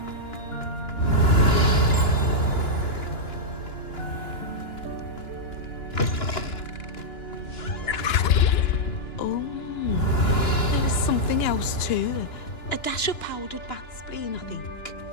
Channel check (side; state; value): right; late; 2.9 ms